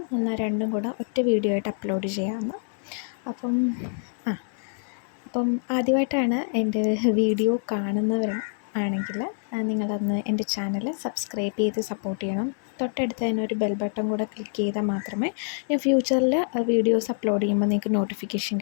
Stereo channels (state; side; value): silent; right; digital silence